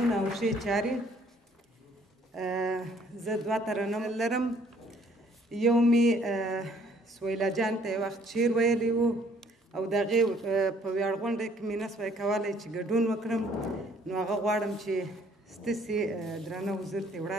او ښې چارې. زه دوه ترنم لرم. یو مې سویلا جان ته یو وخت شعر ویلی و او د هغې په ویاړ غونډه کې مې نه سوی کولی چې ګډون وکړم، نو هغه غواړم چې ستاسې درانه حضور ته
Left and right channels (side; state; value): both; normal; correlation 0.62